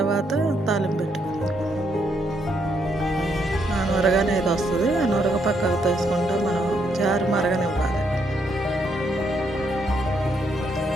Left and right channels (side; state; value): both; normal; correlation 0.75